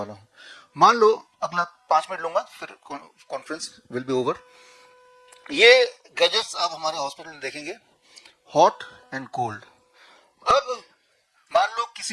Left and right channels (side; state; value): both; identical; correlation 1.00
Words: हूं। मान लो अगला 5 मिनट लूंगा, फिर कॉन्फ्रेंस विल बी ओवर। ये गैजेट्स आप हमारे हॉस्पिटल में देखेंगे, हॉट एंड कोल्ड। अब मान लो